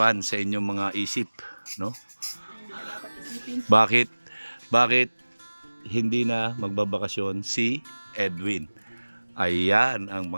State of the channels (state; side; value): inverted; both; correlation -1.00